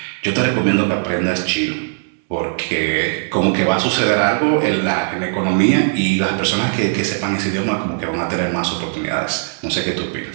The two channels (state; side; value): silent; left; digital silence